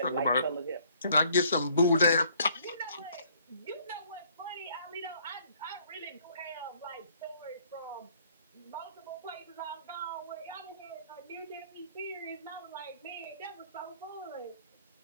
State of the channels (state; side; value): inverted; both; correlation -0.62